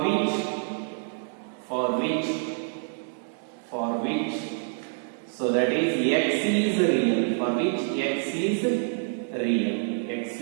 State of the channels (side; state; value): left; silent; digital silence